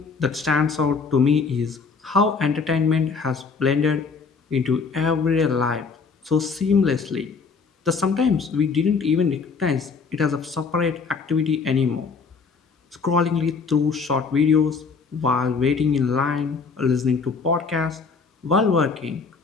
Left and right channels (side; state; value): right; quieter; 5.0 dB